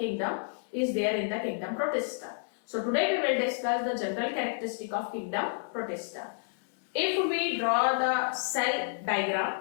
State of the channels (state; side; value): silent; right; 58 dB below the other